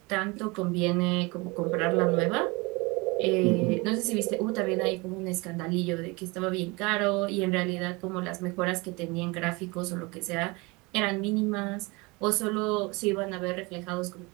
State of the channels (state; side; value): quieter; left; 25.9 dB